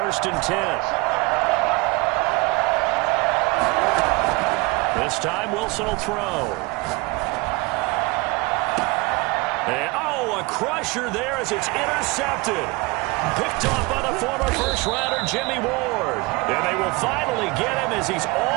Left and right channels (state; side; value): quieter; left; 25.5 dB